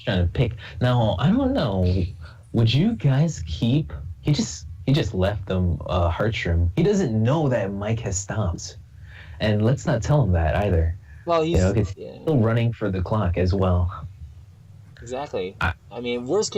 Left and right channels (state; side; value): identical; both; correlation 1.00